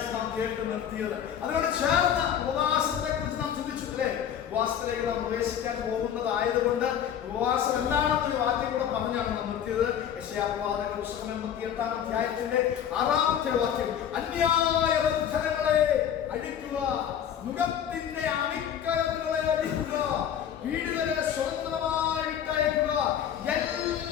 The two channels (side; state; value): right; quieter; 9.3 dB